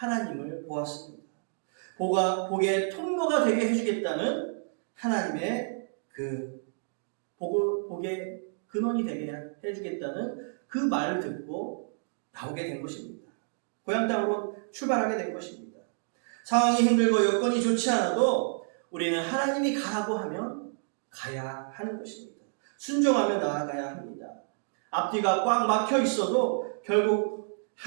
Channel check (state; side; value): silent; left; digital silence